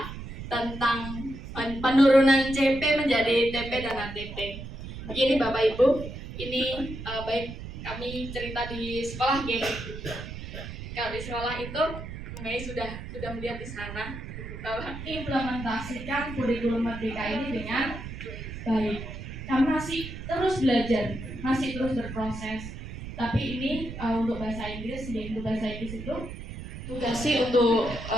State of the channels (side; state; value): right; noise; rumble, 9 dB below the sound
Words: tentang penurunan CP menjadi TP dan ATP. Begini Bapak Ibu, ini baik kami cerita di sekolah ya. Kalau di sekolah itu Mei sudah melihat di sana bahwa implementasikan kurikulum merdeka ini dengan baik. Kami masih terus belajar, masih terus berproses. Tapi ini untuk bahasa Inggris, untuk bahasa Inggris itu tugasnya untuk